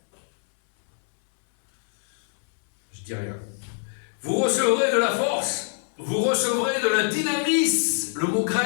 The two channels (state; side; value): silent; right; 62 dB below the other